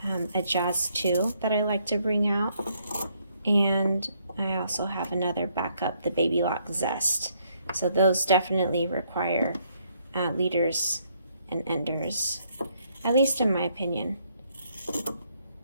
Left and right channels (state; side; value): inverted; both; correlation -0.71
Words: a Jazz 2 that I like to bring out, and I also have another backup, the Baby Lock Zest. So those definitely require leaders and enders, at least in my opinion.